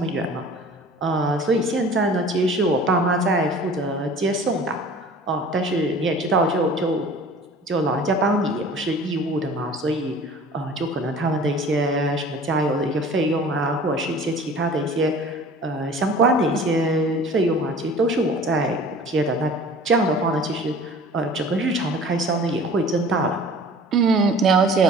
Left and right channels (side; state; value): both; normal; correlation 0.45